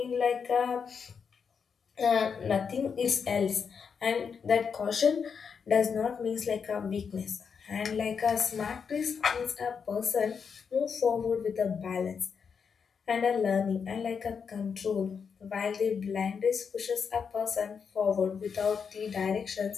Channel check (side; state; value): right; quieter; 6.3 dB